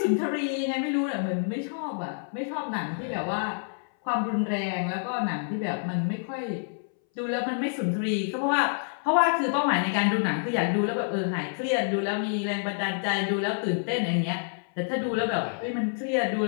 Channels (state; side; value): silent; right; 60 dB below the other